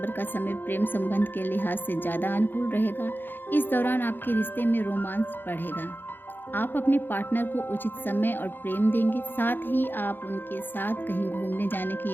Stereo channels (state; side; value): late; right; 0.096 ms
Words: का समय प्रेम संबंध के लिहाज से ज़्यादा अनुकूल रहेगा। इस दौरान आपके रिश्ते में रोमांस बढ़ेगा। आप अपने पार्टनर को उचित समय और प्रेम देंगे, साथ ही आप उनके साथ कहीं घूमने जाने की